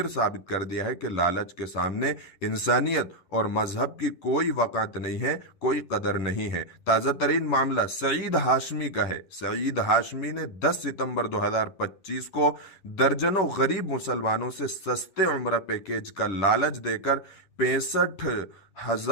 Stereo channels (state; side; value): late; right; 10 ms